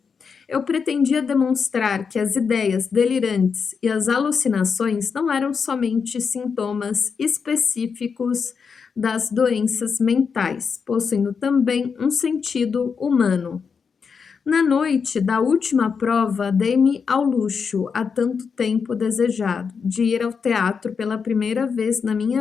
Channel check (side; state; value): right; quieter; 5.9 dB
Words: Eu pretendia demonstrar que as ideias delirantes e as alucinações não eram somente sintomas específicos das doenças mentais, possuindo também um sentido humano. Na noite da última prova, dei-me ao luxo, há tanto tempo desejado, de ir ao teatro pela primeira vez na